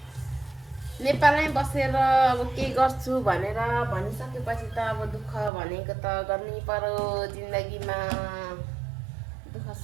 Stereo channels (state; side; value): drops out; left; at 5.5 s